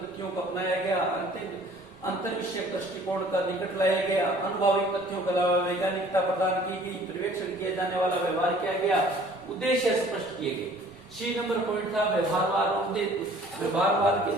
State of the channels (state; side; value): noise; right; rumble, 27 dB below the sound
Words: को अपनाया गया, अंतर विषयक दृष्टिकोण का निकट लाया गया, अनुभवी तथ्यों के अलावा वैज्ञानिकता प्रदान की गई, पर्यवेक्षण किया जाने वाला व्यवहार किया गया, उद्देश्य स्पष्ट किए गए। सी नंबर पॉइंट था व्यवहारवाद। व्यवहारवाद के